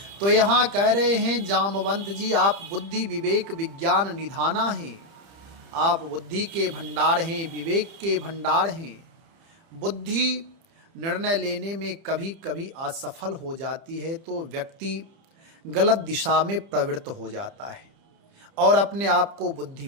तो यहाँ कह रहे हैं जामवंत जी, आप बुद्धि विवेक विज्ञान निधाना हैं, आप बुद्धि के भंडार हैं, विवेक के भंडार हैं। बुद्धि निर्णय लेने में कभी कभी असफल हो जाती है तो व्यक्ति गलत दिशा में प्रवृत्त हो जाता है और अपने आप को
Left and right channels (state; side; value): late; left; 30 ms